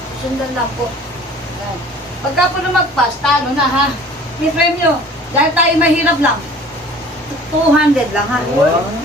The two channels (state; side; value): normal; both; correlation 0.48